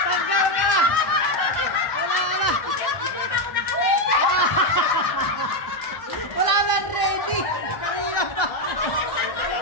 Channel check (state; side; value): late; right; 1.0 ms